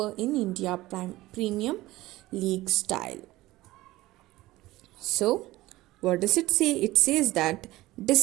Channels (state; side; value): quieter; left; 17.8 dB